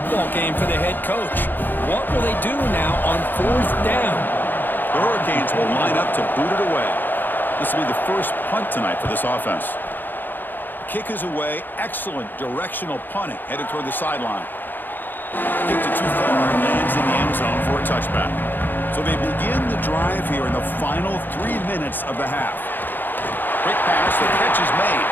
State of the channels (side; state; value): right; late; 0.091 ms